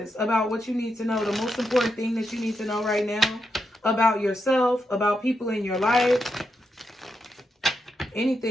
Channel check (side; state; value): both; normal; correlation 0.84